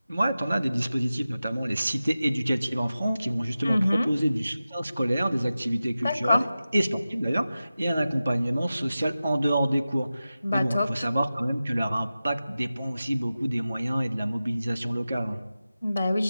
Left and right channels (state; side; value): inverted; both; correlation -0.94